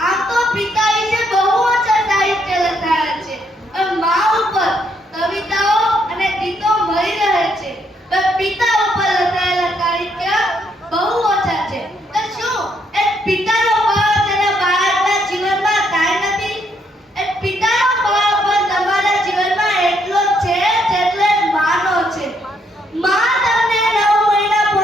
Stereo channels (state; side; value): normal; both; correlation 0.73